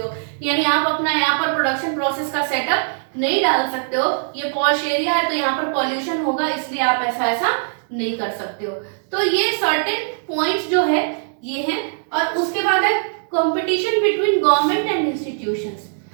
यानी आप अपना यहाँ पर प्रोडक्शन प्रोसेस का सेटअप नहीं डाल सकते हो, ये पॉश एरिया है तो यहाँ पर पॉल्यूशन होगा इसलिए आप ऐसा नहीं कर सकते हो। तो ये सर्टेन पॉइंट्स जो है ये हैं। और उसके बाद है competition between government and institutions.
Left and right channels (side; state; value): left; silent; digital silence